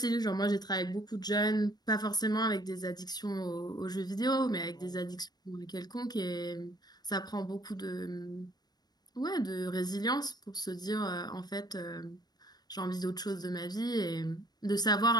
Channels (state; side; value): late; right; 0.19 ms